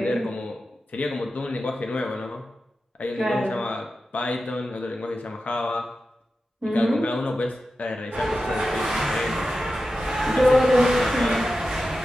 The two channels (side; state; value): both; normal; correlation 0.92